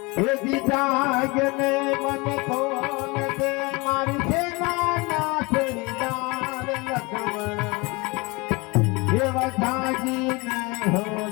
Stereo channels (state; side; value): quieter; right; 26.1 dB